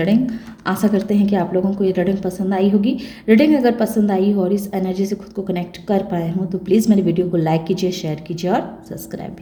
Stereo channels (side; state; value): both; identical; correlation 1.00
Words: आशा करते हैं कि आप लोगों को ये रीडिंग पसंद आई होगी। रीडिंग अगर पसंद आई हो और इस एनर्जी से खुद को कनेक्ट कर पाए हों तो प्लीज़ मेरे वीडियो को लाइक कीजिए, शेयर कीजिए और सब्सक्राइब